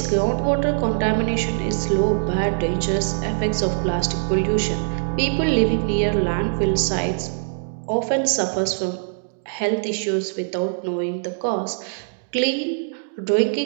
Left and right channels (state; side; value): silent; left; digital silence